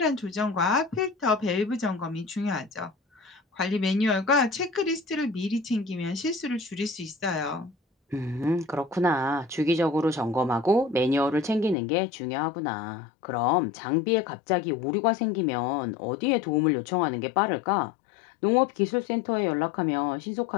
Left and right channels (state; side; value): drops out; right; at 11.8 s